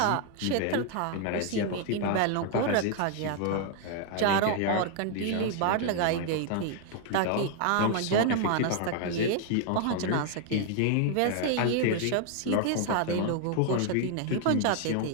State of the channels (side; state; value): both; different; correlation 0.00